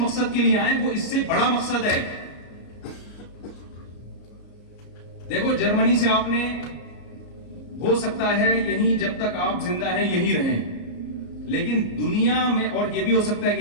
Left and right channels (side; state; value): right; late; 33 ms